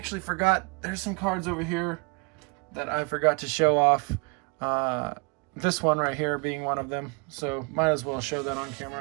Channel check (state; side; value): quieter; left; 30.6 dB